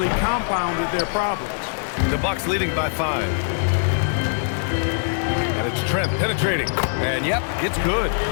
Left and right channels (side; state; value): right; silent; digital silence